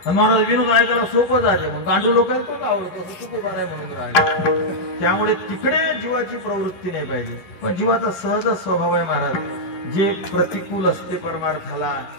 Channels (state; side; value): late; right; 10 ms